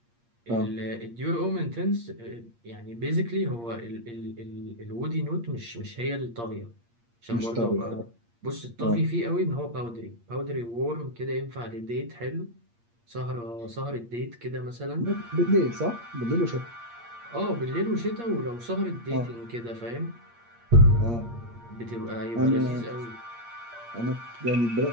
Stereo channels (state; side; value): late; left; 8.6 ms